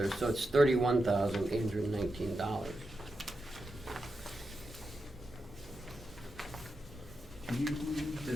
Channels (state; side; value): normal; both; correlation 0.88